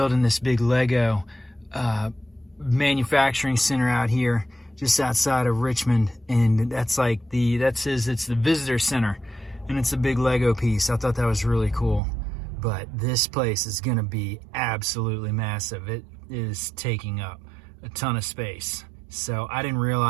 this big Lego manufacturing center out here just outside of Richmond. And that's like it's the visitor center, and it's a big Lego piece. I thought that was really cool. but this place is going to be absolutely massive. It is taking up a ton of space. So I didn't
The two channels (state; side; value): drops out; left; at 12.0 s